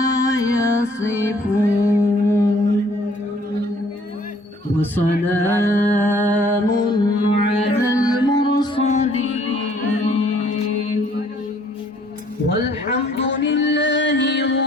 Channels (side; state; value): both; normal; correlation 0.60